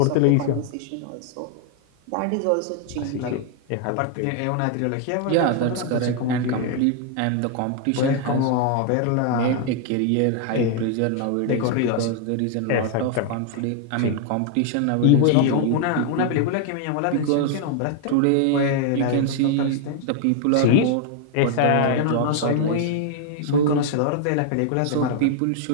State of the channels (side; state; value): both; different; correlation 0.00